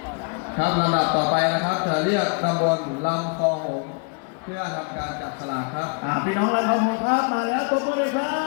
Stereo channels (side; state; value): right; quieter; 35.1 dB